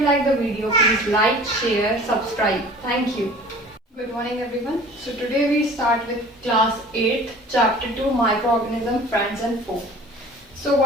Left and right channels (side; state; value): both; normal; correlation 0.45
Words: like the video, please like, share, subscribe. Thank you. Good morning everyone. So today we start with class 8, chapter 2, microorganism, friends and foe. So